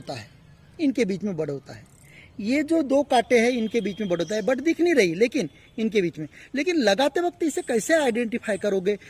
है, इनके बीच में बड होता है। ये जो दो कांटे हैं इनके बीच में बड होता है, बड दिख नहीं रही लेकिन इनके बीच में। लेकिन लगाते वक्त इसे कैसे आइडेंटिफाई करोगे?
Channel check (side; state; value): both; identical; correlation 1.00